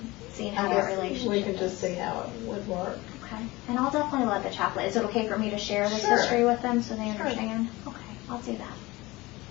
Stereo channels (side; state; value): right; quieter; 20.9 dB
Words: Seeing how I that guess relationship we can is. just see how it would work. Okay. And I'll definitely let the chaplain. Is it okay for me to share this Sure. history with them so they Sure. understand? Okay, I'll do that.